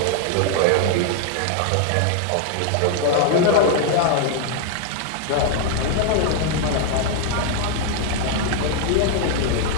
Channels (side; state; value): both; different; correlation 0.00